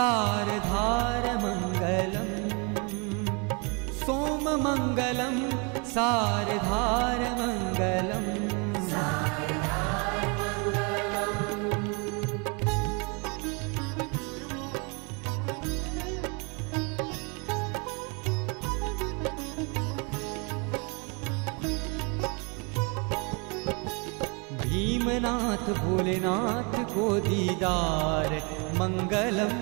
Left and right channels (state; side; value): quieter; left; 33.2 dB